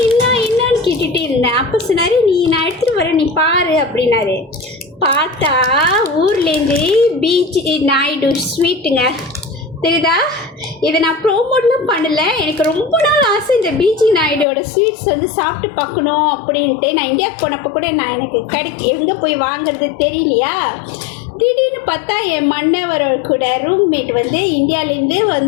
கேட்டுகிட்டே இருந்தேன். அப்போ சொன்னார், நான் எடுத்துகிட்டு வரேன் நீ பாரு அப்படின்னாரு. பார்த்தா ஊர்லேருந்து பீச் நாயுடு ஸ்வீட்டுங்க தெரியுதா. இதை நான் ப்ரோமோட்லாம் பண்ணலை. எனக்கு ரொம்ப நாள் ஆசை இந்த பிஜி நாயுடோட ஸ்வீட்ஸ் வந்து சாப்பிட்டு பார்க்கணும் அப்படின்ட்டு. நான் இந்தியாவுக்கு போனப்போ கூட நான் எனக்கு எங்கே போய் வாங்குறது தெரியலையா. திடீர்னு பார்த்தா என் மன்னவர் கூட ரூம்மேட் வந்து இந்தியாவிலேருந்து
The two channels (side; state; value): right; drops out; at 14.5 s